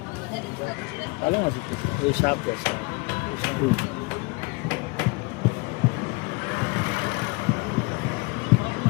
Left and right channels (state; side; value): quieter; right; 27.4 dB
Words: ভালো আছে ওই সাপ আছে